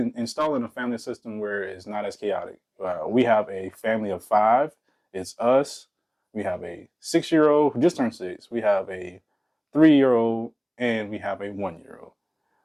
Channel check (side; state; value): both; identical; correlation 1.00